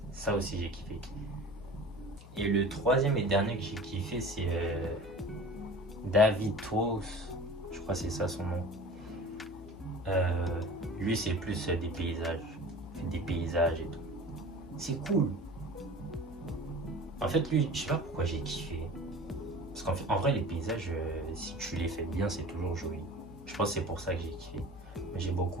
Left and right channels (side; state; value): left; noise; hum, 17 dB below the sound